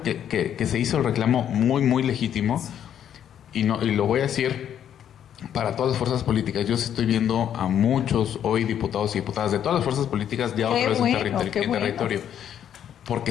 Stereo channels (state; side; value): quieter; right; 9.7 dB